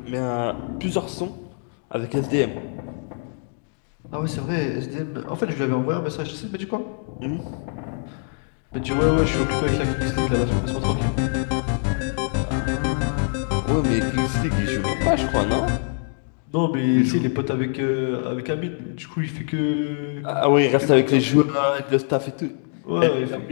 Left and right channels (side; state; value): right; silent; 56 dB below the other